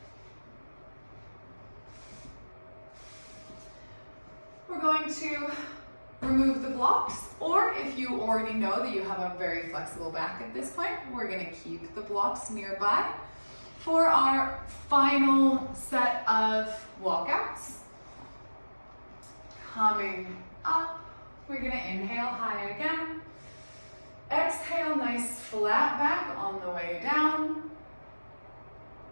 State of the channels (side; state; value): both; inverted; correlation -1.00